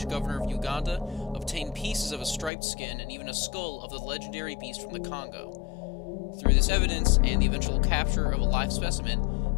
governor of Uganda, obtained pieces of a striped skin and even a skull of the legendary beast from the Congo. Through this evidence and the eventual capture of a live specimen,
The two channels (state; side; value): drops out; right; at 2.5 s